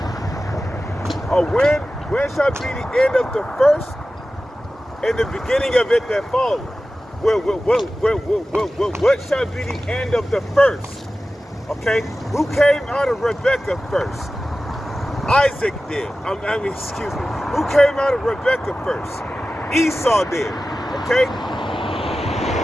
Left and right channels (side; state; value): both; normal; correlation 0.95